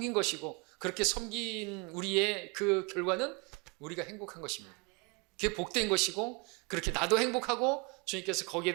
것이고 그렇게 섬긴 우리의 그 결과는 우리가 행복한 것입니다. 그게 복된 것이고 그렇게 나도 행복하고 주님께서 거기에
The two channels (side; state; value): left; quieter; 30.1 dB